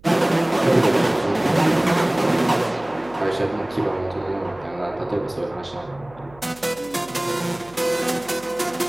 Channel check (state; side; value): noise; right; hum, 24 dB below the sound